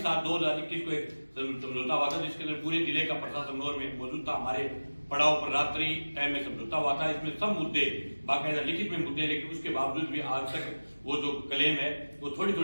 को एक समझौता हुआ था, जिसके अंदर पूरे जिले का प्रशासन में मौजूद था। हमारे पड़ाव पर रात्रि टाइम में समझौता हुआ था। इसमें सब मुद्दे बाकायदा लिखित में मुद्दे, लेकिन उसके बावजूद भी आज तक वो जो क्लेम है वो थोड़ी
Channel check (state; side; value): inverted; both; correlation -1.00